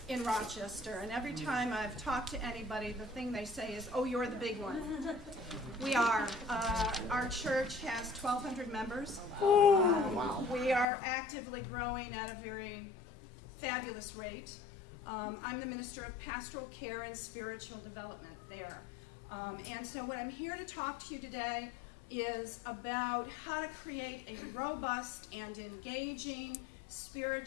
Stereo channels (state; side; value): drops out; right; at 10.9 s